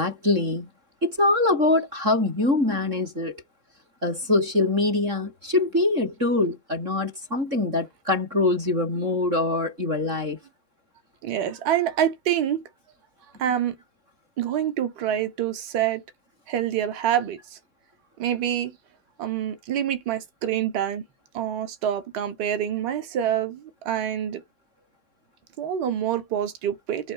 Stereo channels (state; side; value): late; left; 3.7 ms